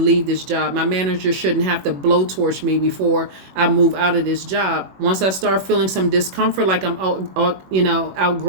this job. My manager shouldn't have to blowtorch me before I move out of this job. Once I start feeling some discomfort, like I'm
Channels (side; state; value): left; late; 21 ms